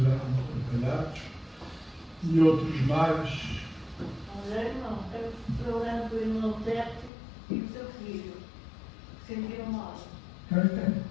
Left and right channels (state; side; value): drops out; right; at 7.1 s